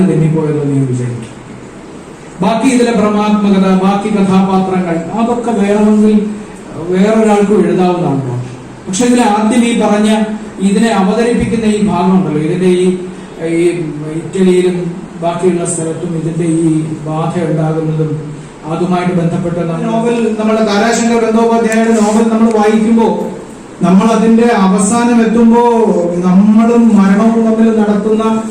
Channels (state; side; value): identical; both; correlation 1.00